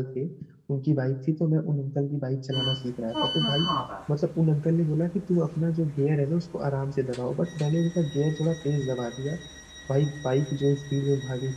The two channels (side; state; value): both; identical; correlation 1.00